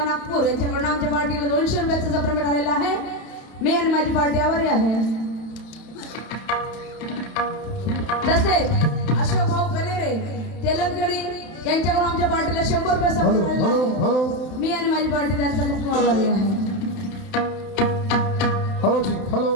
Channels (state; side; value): late; right; 31 ms